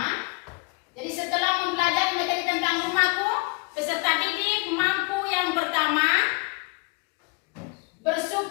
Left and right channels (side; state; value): right; quieter; 29.5 dB